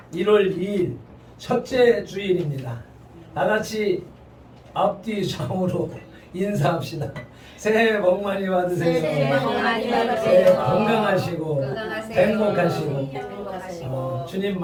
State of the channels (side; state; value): both; identical; correlation 1.00